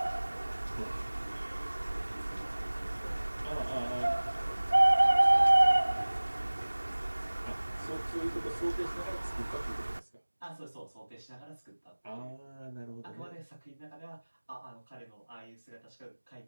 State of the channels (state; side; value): inverted; both; correlation -1.00